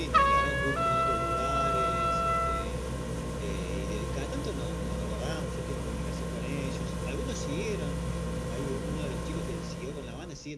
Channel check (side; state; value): both; identical; correlation 1.00